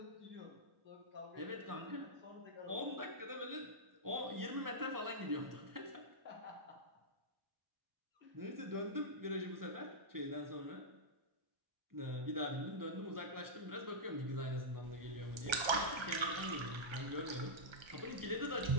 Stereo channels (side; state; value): left; late; 1.3 ms